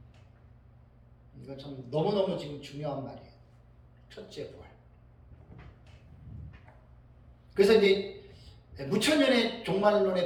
이건 참 너무너무 지금 중요한 말이에요. 첫째 부활. 그래서 이제 무천년의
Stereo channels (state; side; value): identical; both; correlation 1.00